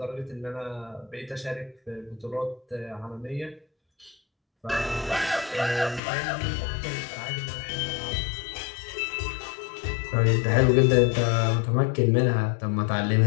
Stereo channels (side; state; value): right; drops out; at 6.0 s